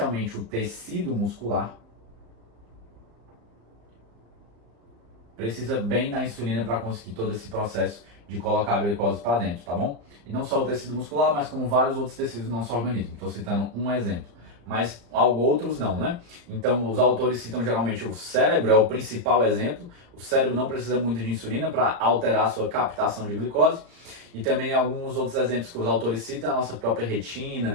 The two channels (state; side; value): late; left; 35 ms